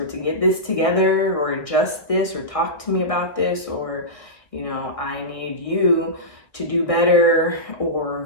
to get this together, or adjust this, or talk to me about this, or, you know, I need you to do better,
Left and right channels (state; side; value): late; right; 1.7 ms